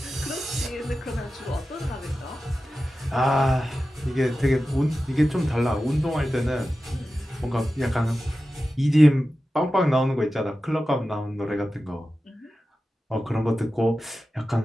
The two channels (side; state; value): both; normal; correlation 0.93